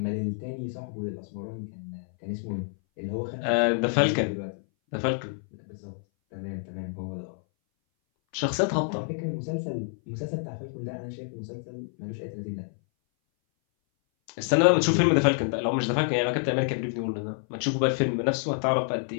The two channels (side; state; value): right; silent; 58 dB below the other